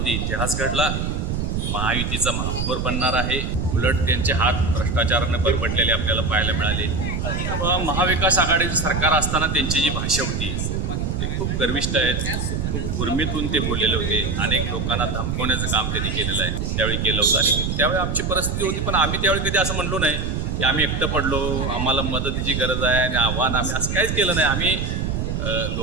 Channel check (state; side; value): noise; right; rumble, 1 dB below the sound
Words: इतिहास घडला, महायुतीचा महापौर बनणार आहे, उलट त्यांचे हात भ्रष्टाचाराने परपटलेले आपल्याला पाहायला मिळाले. महाविकास आघाडीचं सरकार असताना त्यांची जी भाषा होती ते खूप गर्विष्ठ आहेत, खूप उर्मीतून ते बोललेले होते. अनेक लोकांना धमकवण्याचं काम त्यांनी केलेलं आहे, त्यावेळी केलं होतं. आणि त्यावेळी आमची परिस्थिती होती, पण आम्ही त्यावेळी कधी असं म्हणलो नाही की आम्ही एकटं पडलो, आम्हाला मदतीची गरज आहे आणि आव्हान, आम्ही असं काहीच केलं नाही. आम्ही